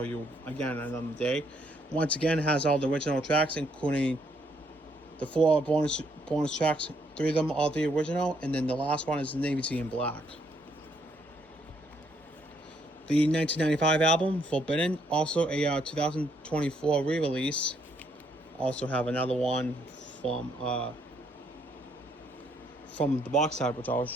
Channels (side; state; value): both; normal; correlation 0.71